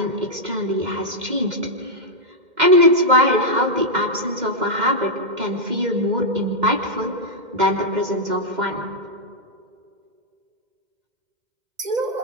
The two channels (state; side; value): late; left; 2.1 ms